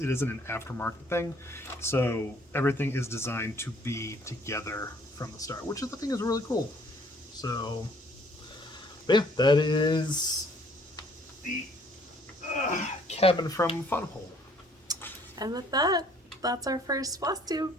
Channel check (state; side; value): normal; both; correlation 0.60